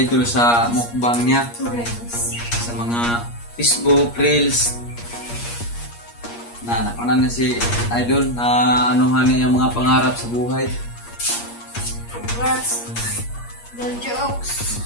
sa mukbang niya sa mga Facebook Reels na nakunan na si Idol na anuhan niya yung mga pangarap sa buhay. Congrats, Idol Jokes.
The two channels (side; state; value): right; late; 8.5 ms